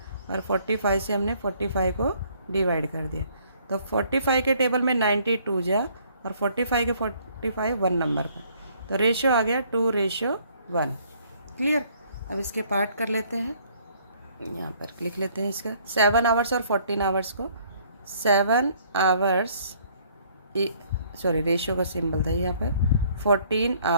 और 45 से हमने 45 को डिवाइड कर दिया, तो 45 के टेबल में 92 जा और 45 के 45 1 नंबर पर, तो रेशियो आ गया 2:1। क्लियर। अब इसके पार्ट कर लेते हैं, यहाँ पर लिख लेते हैं इसका 7 आवर्स और 14 आवर्स को। 7 आवर्स सॉरी रेशियो का सिंबल था यहाँ पर, 14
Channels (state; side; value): inverted; both; correlation -0.62